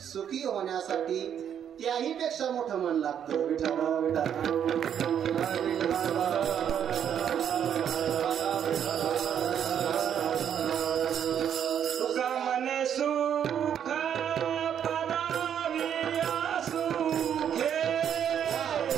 सुखी होण्यासाठी त्याही पेक्षा मोठं मन लागतं. तुका मने सुख पराविया सुखे,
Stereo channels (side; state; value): left; quieter; 9.0 dB